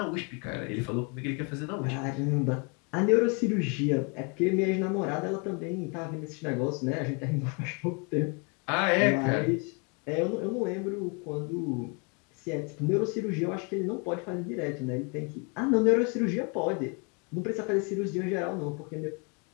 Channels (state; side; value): quieter; right; 34.3 dB